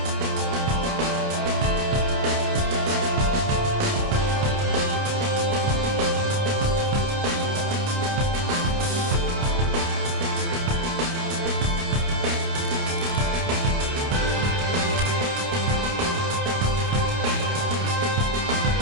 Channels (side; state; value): left; late; 29 ms